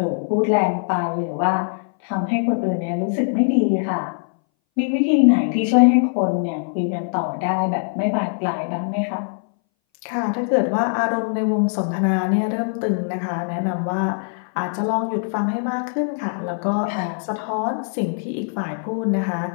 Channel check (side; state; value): right; silent; 61 dB below the other